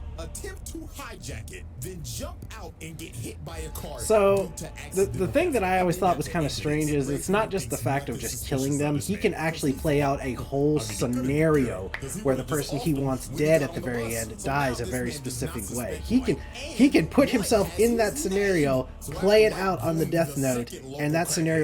attempt to hijack it, then jump out and get hit by a car. So, due to the accidental thing that I always thought was kind of evidence. strange is it's not just the fact of just killing them. He can actually play out a whole scenario where the person he wants dead at the very end dies a very specific way. He can put himself in that scenario, play it out on the death note, and that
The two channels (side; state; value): both; identical; correlation 1.00